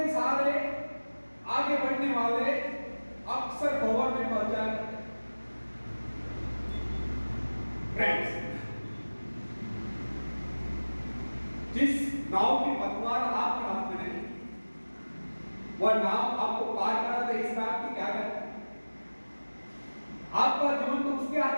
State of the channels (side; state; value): both; inverted; correlation -1.00